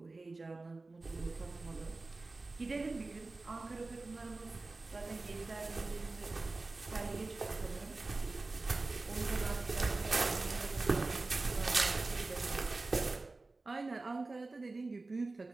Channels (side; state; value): left; quieter; 3.4 dB